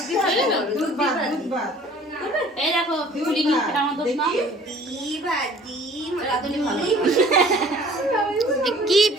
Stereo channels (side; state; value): both; normal; correlation 0.51